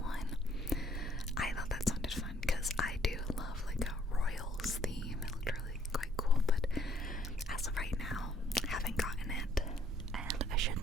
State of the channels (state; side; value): normal; both; correlation 0.65